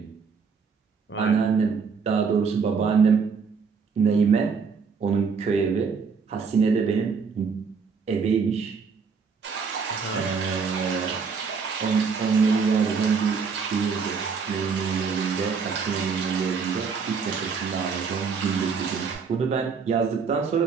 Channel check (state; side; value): quieter; left; 5.6 dB